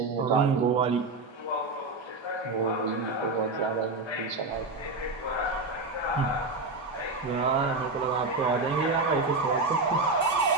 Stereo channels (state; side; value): quieter; left; 3.4 dB